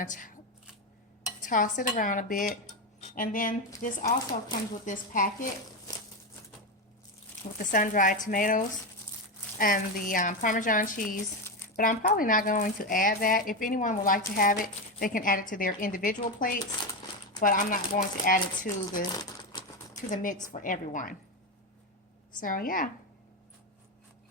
to toss it around a bit. And then this also comes with this packet with the sun-dried tomatoes and the Parmesan cheese. But I'm probably not going to add that. If anyone would like to have it, they can add it to their individual plates. But I'm not going to add it to the mix for everyone. So yeah.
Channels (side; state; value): both; normal; correlation 0.13